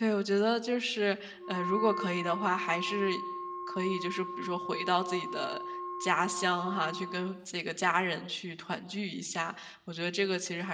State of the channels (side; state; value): both; identical; correlation 1.00